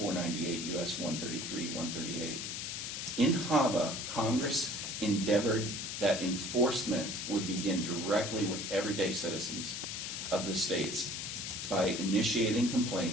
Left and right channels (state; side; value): noise; left; hiss, 5 dB below the sound